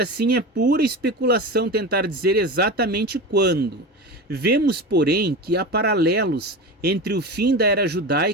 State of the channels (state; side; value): normal; both; correlation 0.26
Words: assim é pura especulação tentar dizer exatamente quando. Vemos, porém, que há paralelos entre o fim da era